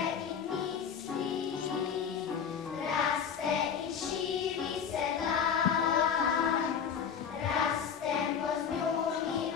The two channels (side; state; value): right; quieter; 7.2 dB